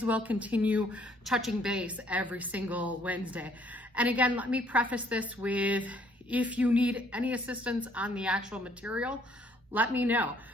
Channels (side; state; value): both; normal; correlation 0.64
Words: well continue touching base every single Wednesday. And again, let me preface this with, if you need any assistance on the actual material, let me know.